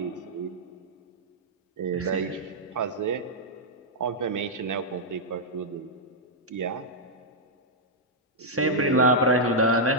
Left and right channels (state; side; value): normal; both; correlation -0.07